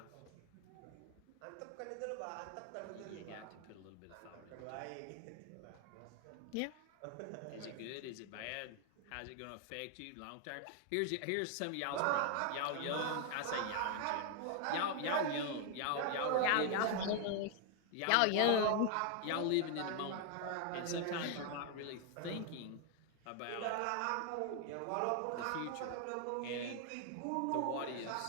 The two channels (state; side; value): different; both; correlation 0.00